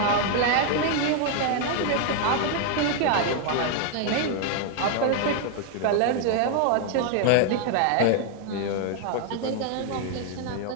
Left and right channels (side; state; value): both; different; correlation 0.00